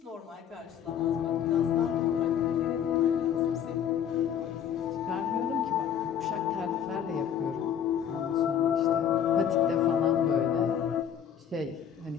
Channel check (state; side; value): quieter; right; 8.9 dB